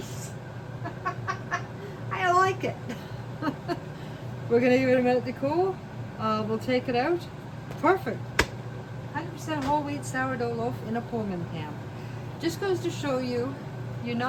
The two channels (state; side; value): identical; both; correlation 1.00